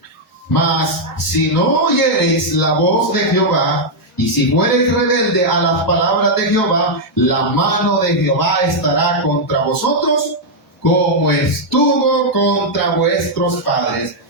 Mas si no oyereis la voz de Jehová, y si fuereis rebelde a las palabras de Jehová, la mano de Jehová estará contra vosotros, como estuvo contra vuestros padres.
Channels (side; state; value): both; normal; correlation -0.03